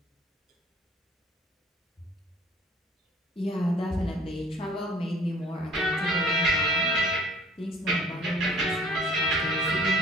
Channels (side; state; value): both; normal; correlation 0.53